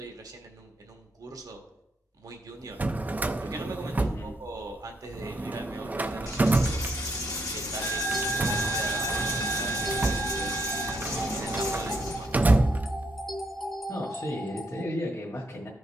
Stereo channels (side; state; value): both; normal; correlation 0.76